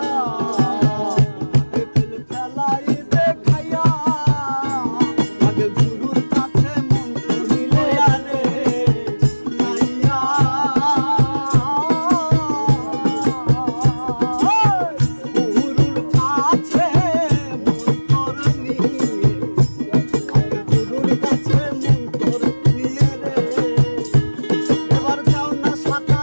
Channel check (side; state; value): both; inverted; correlation -1.00